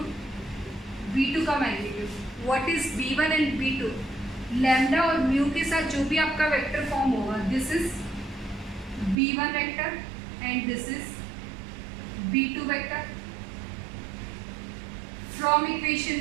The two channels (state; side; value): drops out; left; at 9.2 s